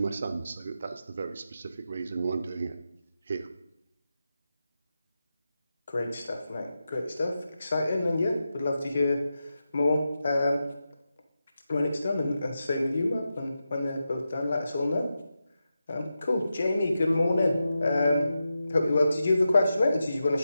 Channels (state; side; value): inverted; both; correlation -0.90